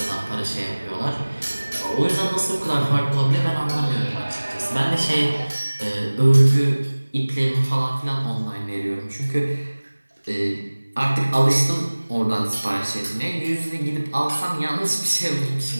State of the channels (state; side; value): inverted; both; correlation -1.00